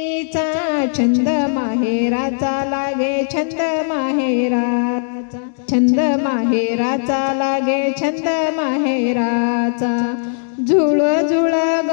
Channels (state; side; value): silent; right; digital silence